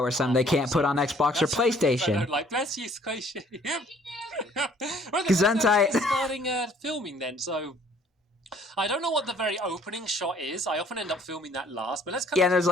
or something they can't put on Xbox or PlayStation. I don't like. Bless you, Squishy. Well, Gesundheit. Starting filming then, so... I don't know what the very opening shot is. I often end up filming that last, but let's kind of there's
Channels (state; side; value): normal; both; correlation 0.59